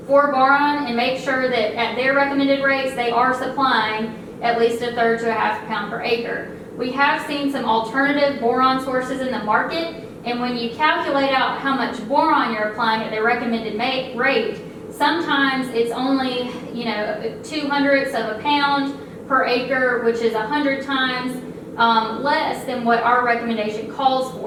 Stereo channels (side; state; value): both; identical; correlation 1.00